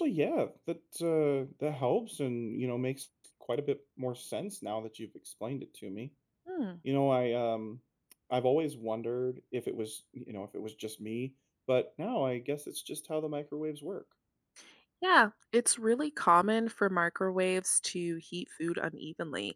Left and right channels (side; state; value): both; identical; correlation 1.00